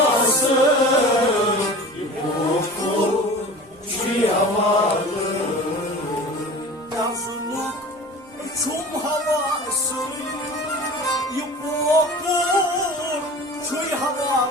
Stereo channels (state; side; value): normal; both; correlation 0.38